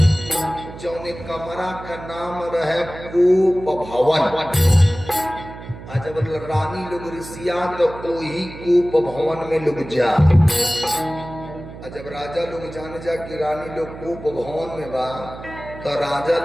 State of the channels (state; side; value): noise; right; hum, 14 dB below the sound